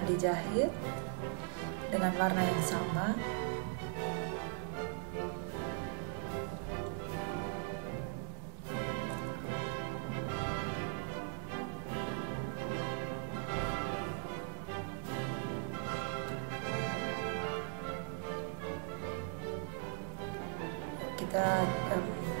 dijahit dengan warna yang sama. Kita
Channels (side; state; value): left; silent; 52 dB below the other